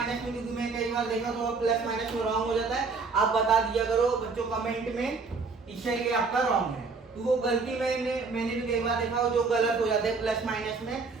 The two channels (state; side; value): quieter; left; 4.4 dB